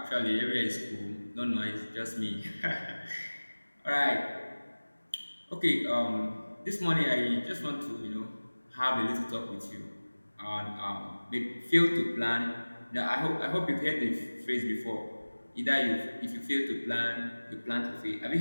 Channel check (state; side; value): inverted; both; correlation -1.00